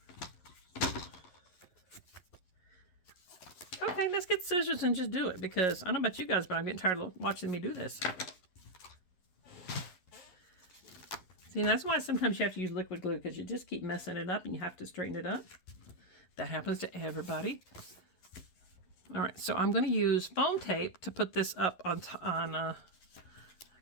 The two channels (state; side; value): late; right; 11 ms